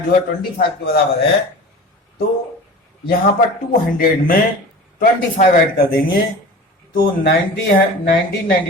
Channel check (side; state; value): both; normal; correlation 0.36